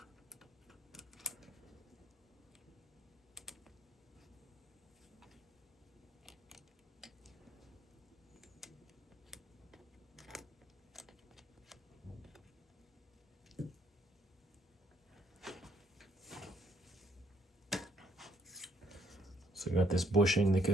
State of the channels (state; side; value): normal; both; correlation 0.68